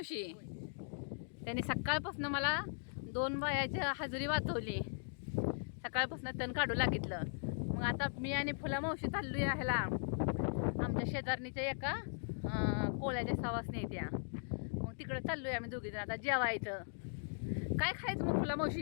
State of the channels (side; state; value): right; silent; digital silence